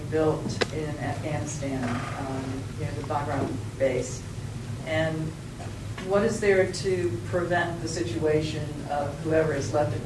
built in Afghanistan, near the Bagram base. And what is there to prevent the situation of whoever is left at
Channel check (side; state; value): both; identical; correlation 1.00